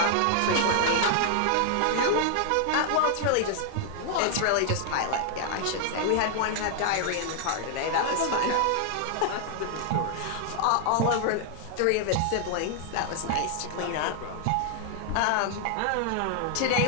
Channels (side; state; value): both; different; correlation 0.00